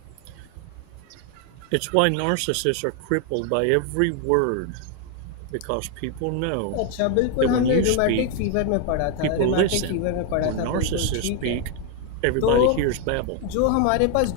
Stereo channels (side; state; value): both; different; correlation 0.01